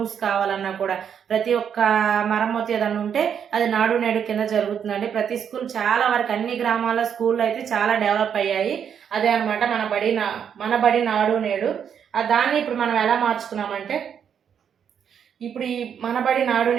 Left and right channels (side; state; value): left; quieter; 8.0 dB